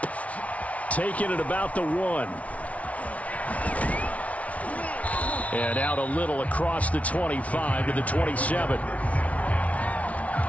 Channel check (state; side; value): late; right; 0.066 ms